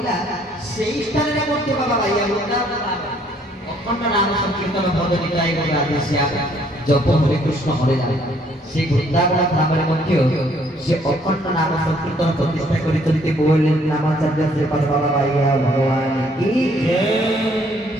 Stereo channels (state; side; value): normal; both; correlation 0.64